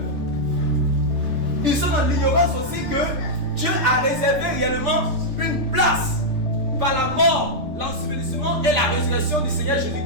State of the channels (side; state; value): left; late; 3.3 ms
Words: Ils sont dans l'ignorance aussi que Dieu a réservé réellement une place par la mort, l'ensevelissement et la résurrection du Seigneur